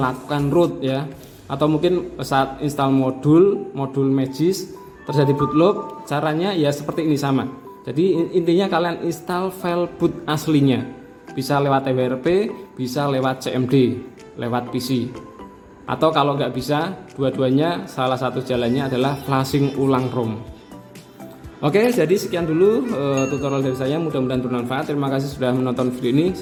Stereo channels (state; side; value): identical; both; correlation 1.00